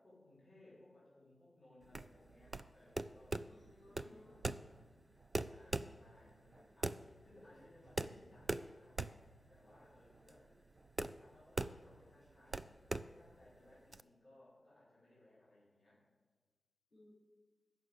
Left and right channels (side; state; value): both; normal; correlation 0.94